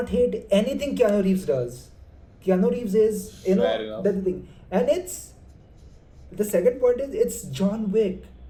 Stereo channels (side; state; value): both; identical; correlation 1.00